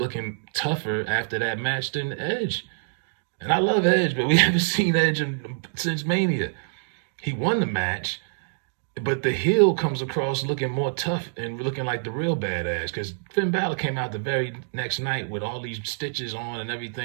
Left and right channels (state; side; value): silent; left; digital silence